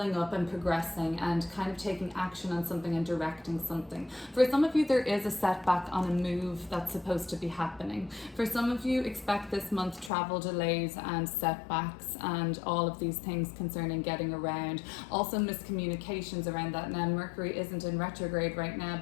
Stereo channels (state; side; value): drops out; right; at 10.1 s